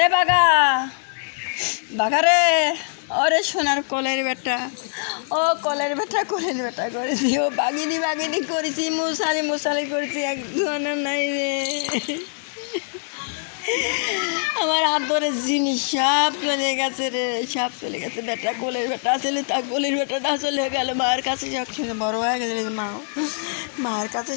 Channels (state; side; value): silent; right; 63 dB below the other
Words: বাঘা রে, ওরে সোনার কলের বেটা, ও কলের বেটা করে দিও, বাগিনি করেছি, মশালি করেছি, এক ধরনের নাই রে, আমার আদরের জিনিস সব চলে গেছে রে, সব চলে গেছে, বেটা কোলের বেটা আসলে তা কোলের বেটাটা চলে গেল, মায়ের কাছে সব সময় বড় হয়ে গেছে, মায়ের কাছে